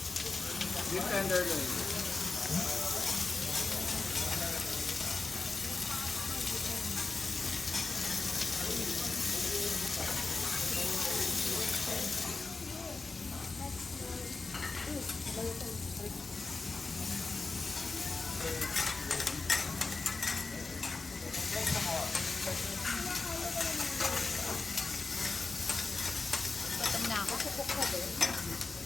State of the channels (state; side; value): quieter; right; 3.8 dB